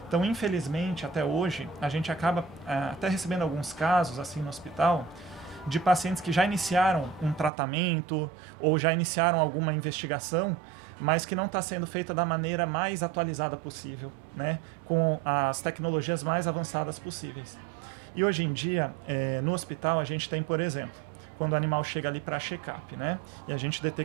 Então, infelizmente, até hoje, a gente acaba até recebendo alguns casos assim no hospital de pacientes que já iniciaram um tratamento ou já iniciaram alguma investigação, mas que não está sendo feita da maneira mais atualizada possível, né? Com as tecnologias mais avançadas possíveis. E hoje em dia, no hospital, a gente tem, por exemplo, quando o animal chega ali para check-up, né? E a gente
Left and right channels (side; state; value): left; drops out; at 7.5 s